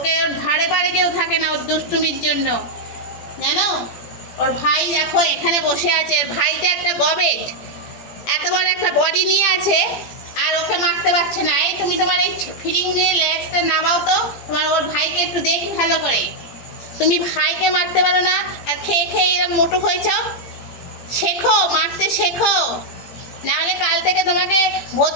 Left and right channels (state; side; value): late; right; 17 ms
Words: ওর ধারে পারে কেউ থাকে না ওর দুষ্টুমির জন্য, জানো? ওর ভাই দেখো এখানে বসে আছে, ওর ভাইটা একটা গবেট, এত বড় একটা বডি নিয়ে আছে, আর ওকে মারতে পারছে না। এই তুমি তোমার এই ফিরিং নিয়ে লেজটা নামাও তো, তোমার ওর ভাইকে একটু দেখি ভালো করে। তুমি ভাইকে মারতে পারো না, আর খেয়ে খেয়ে এরকম মোটু হয়েছ। শেখো, মারতে শেখো, নাহলে কাল থেকে তোমাকে